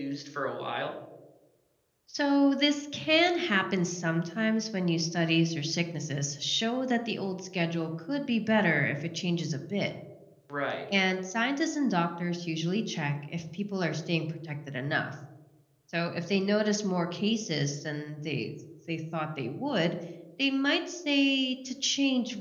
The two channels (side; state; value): both; identical; correlation 1.00